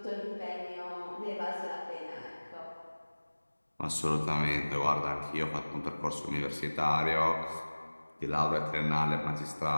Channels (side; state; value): both; inverted; correlation -1.00